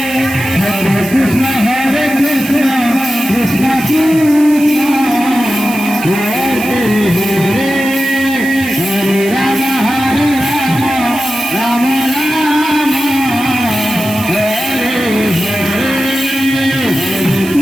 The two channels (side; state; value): right; noise; hiss, 15 dB below the sound